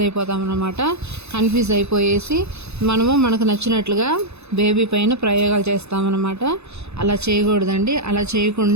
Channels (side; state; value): left; late; 0.80 ms